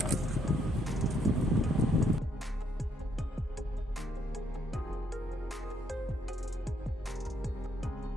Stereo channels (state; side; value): normal; both; correlation 0.72